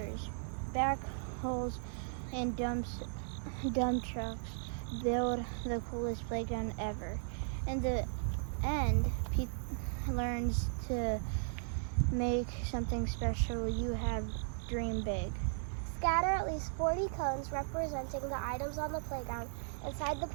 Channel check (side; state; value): left; silent; digital silence